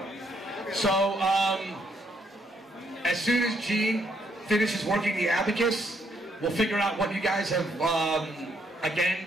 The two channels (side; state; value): both; normal; correlation 0.72